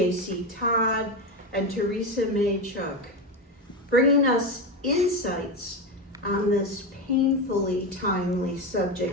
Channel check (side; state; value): both; normal; correlation 0.15